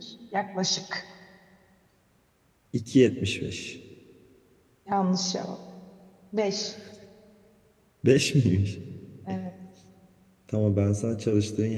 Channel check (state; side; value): identical; both; correlation 1.00